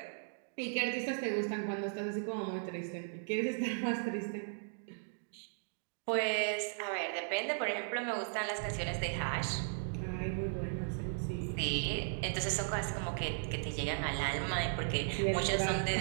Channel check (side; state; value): left; silent; digital silence